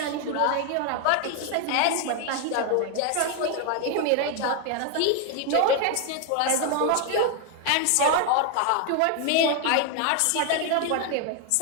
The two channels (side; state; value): both; different; correlation 0.01